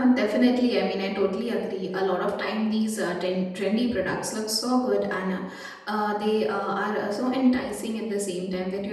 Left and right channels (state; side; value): identical; both; correlation 1.00